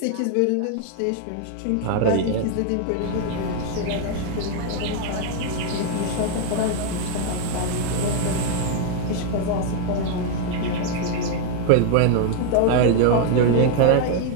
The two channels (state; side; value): different; both; correlation 0.00